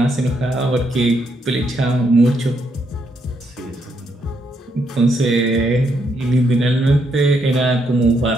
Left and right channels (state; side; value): normal; both; correlation 0.76